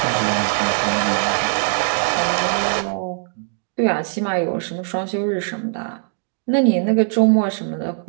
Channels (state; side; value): silent; left; 65 dB below the other